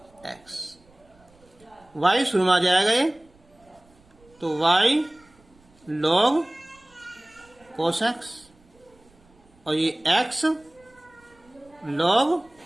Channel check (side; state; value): right; noise; rumble, 30 dB below the sound